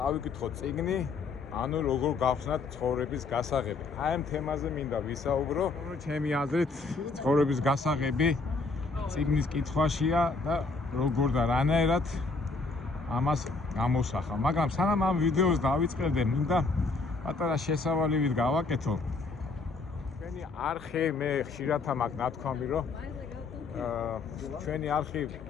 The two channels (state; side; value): quieter; right; 3.9 dB